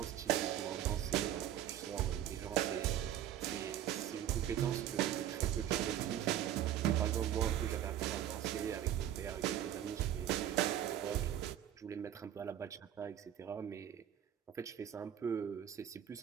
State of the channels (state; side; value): quieter; left; 11.0 dB